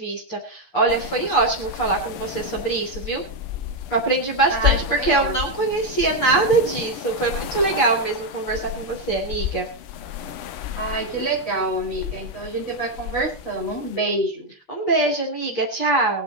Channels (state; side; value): late; right; 9.0 ms